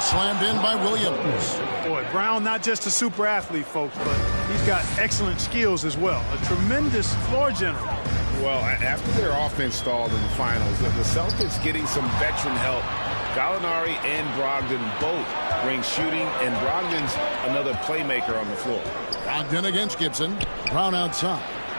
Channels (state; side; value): inverted; both; correlation -1.00